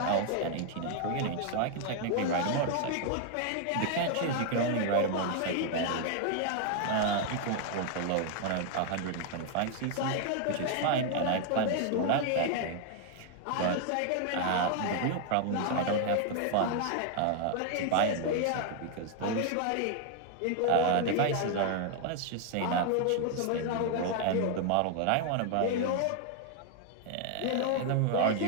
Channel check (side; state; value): both; different; correlation 0.00